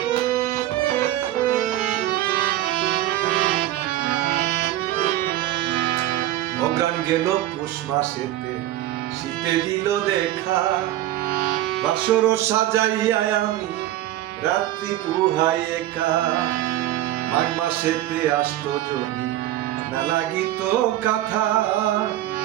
অজ্ঞান গেল পৌষ মাসেতে শীতে দিল দেখা, বাসর সাজাইয়া আমি রাত্রি পুহাই একা, মাঘ মাসেতে আসতো যদি না লাগিত কথা,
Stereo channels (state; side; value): quieter; left; 14.2 dB